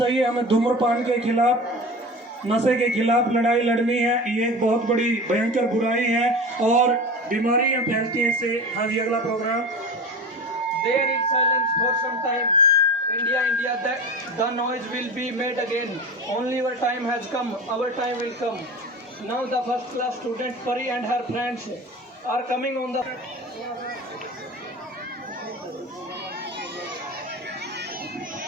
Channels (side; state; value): both; normal; correlation 0.31